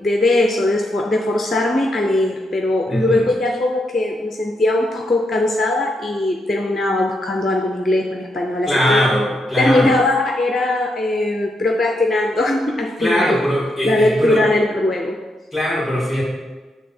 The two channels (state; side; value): normal; both; correlation 0.80